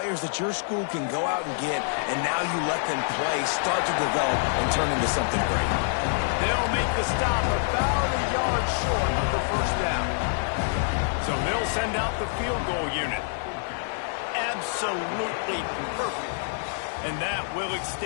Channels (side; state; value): right; silent; 61 dB below the other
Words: that your school can go out and get, and now you let them play, start to develop, and turn into something great. They'll make the stop about a yard short of the first down. So they'll send out the field goal unit. Absolutely perfect. And that will